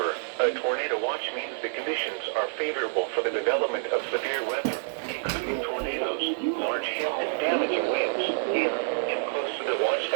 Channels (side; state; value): left; silent; digital silence